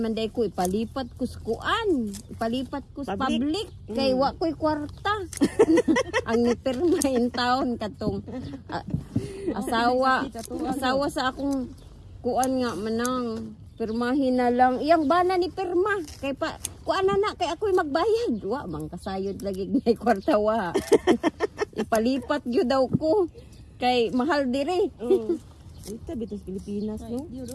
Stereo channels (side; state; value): both; identical; correlation 1.00